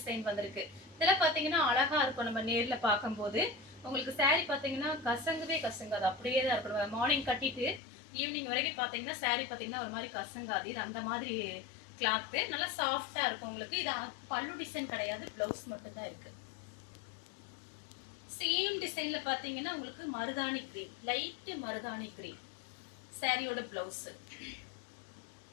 வந்திருக்கு. இதெல்லாம் பாத்தீங்கன்னா அழகா இருக்கும் நம்ம நேர்ல பார்க்கும்போது. உங்களுக்கு சாரி பாத்தீங்கன்னா கசங்கவே கசங்காது, அப்படியே தான் இருக்கணும். மார்னிங் கட்டிட்டு ஈவினிங் வரைக்கும் பாத்தீங்கன்னா சாரி பாத்தீங்கன்னா ஒரு மாதிரி கசங்காது. இது அந்த மாதிரி கிளாத் நல்லா சாஃப்டா இருக்கும் உங்களுக்கு. இது பல்லு டிசைன் கிடையாது, பிளவுஸ் மட்டும் தான் இருக்கு. சேம் டிசைன்ல பாத்தீங்கன்னா உங்களுக்கு மருதாணி கிரீன், லைட் மருதாணி கிரீன் சாரியோட பிளவுஸ்.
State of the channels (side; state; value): right; drops out; at 7.8 s